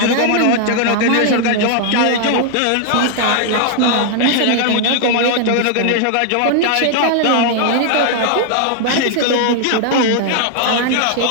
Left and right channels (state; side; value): different; both; correlation 0.00